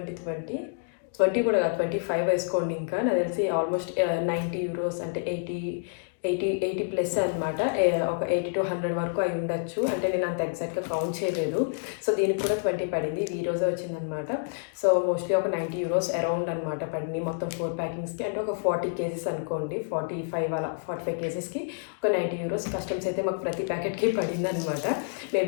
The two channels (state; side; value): silent; right; digital silence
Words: కూడా కాదు, 25 వేసుకోండి. ఇంకా నాకు తెలిసి ఆల్మోస్ట్ 90 euros అంటే 80 ప్లస్ అనమాట. ఒక 80 to 100 వరకు అయి ఉండొచ్చు. అంటే నేను అంత ఎగ్జాక్ట్గా కౌంట్ చేయలేదు. సో దీనికి కూడా 20 పడింది. ఇది ఈ రోజే వచ్చిందనమాట. సో మోస్ట్లీ ఒక 90 euros అరౌండ్ అనమాట పడింది మొత్తం 4 ప్యాకింగ్స్కి. అంటే ఒక 40 kgs అనుకోండి, 45 kgsకి ఒక 90 euros కస్టమ్స్ అయితే మాకు ప్రతి ప్యాకెట్కి పడింది అనమాట.